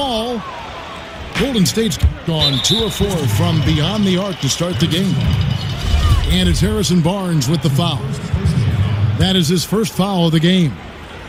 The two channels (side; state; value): both; identical; correlation 1.00